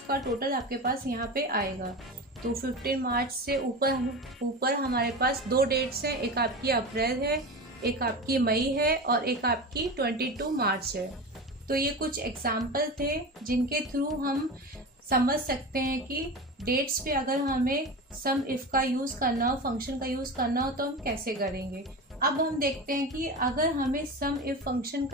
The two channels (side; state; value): both; normal; correlation 0.27